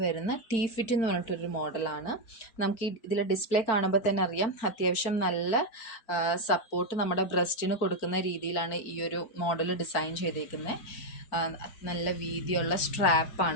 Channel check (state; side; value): late; right; 4.4 ms